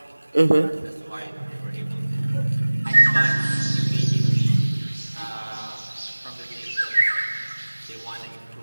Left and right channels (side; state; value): both; inverted; correlation -1.00